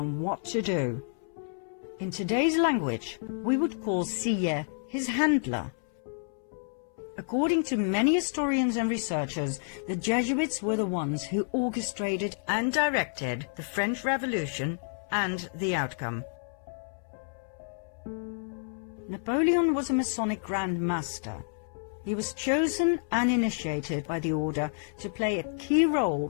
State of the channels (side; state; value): right; silent; 58 dB below the other